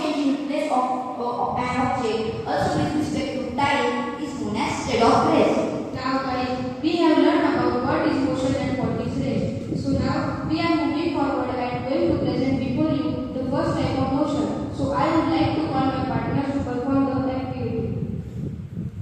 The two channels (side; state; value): both; identical; correlation 1.00